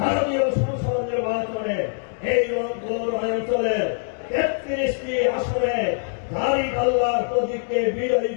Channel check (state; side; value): silent; right; digital silence